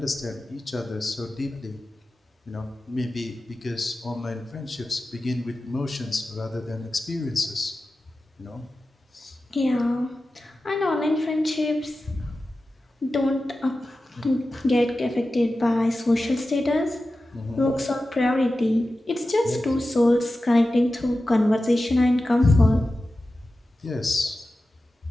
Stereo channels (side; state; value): both; normal; correlation 0.94